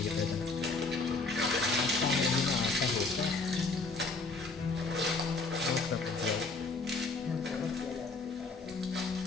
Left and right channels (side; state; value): right; quieter; 3.8 dB